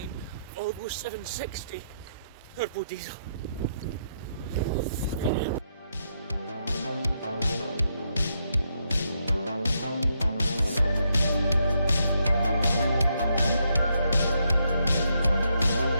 Volvo 760 turbo diesel.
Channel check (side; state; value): both; inverted; correlation -0.79